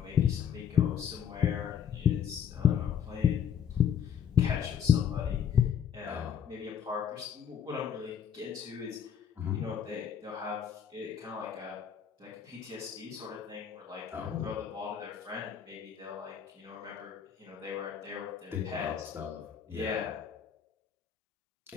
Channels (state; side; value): quieter; right; 8.3 dB